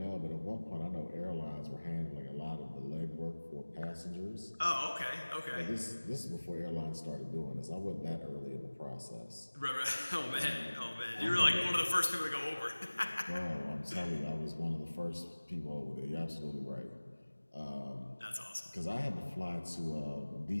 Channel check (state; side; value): inverted; both; correlation -1.00